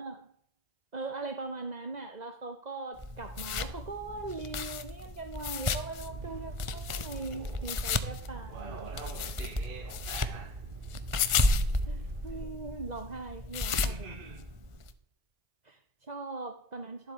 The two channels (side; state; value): left; late; 1.5 ms